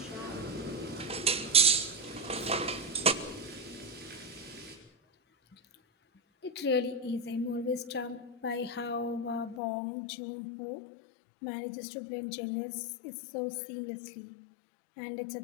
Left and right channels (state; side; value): drops out; right; at 9.6 s